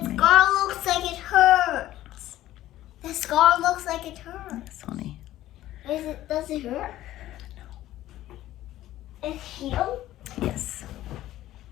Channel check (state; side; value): quieter; right; 14.3 dB